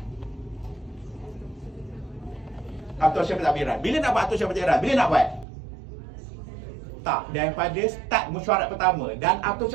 Atau cara pentadbiran. Bila nak buat atau cara pentadbiran? Bila nak buat? Tak, daripada start mesyuarat pertama. Dan atau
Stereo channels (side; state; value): left; drops out; at 5.5 s